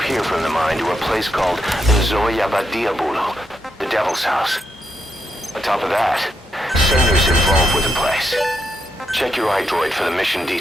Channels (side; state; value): both; normal; correlation 0.82